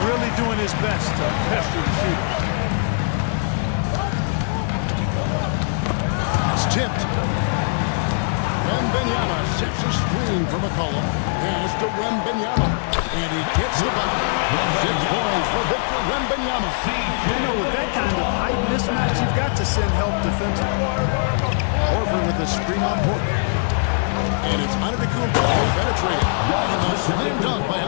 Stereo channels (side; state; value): right; silent; digital silence